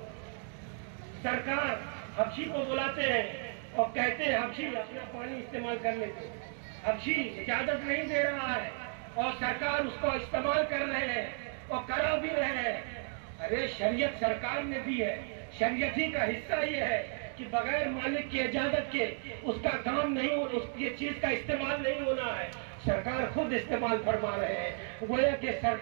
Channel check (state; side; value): silent; left; 55 dB below the other